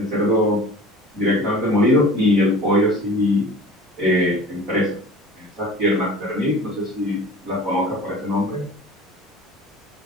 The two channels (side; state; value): both; normal; correlation 0.41